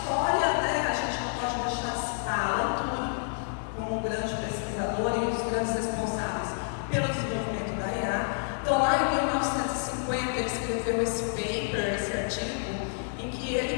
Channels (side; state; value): right; silent; 56 dB below the other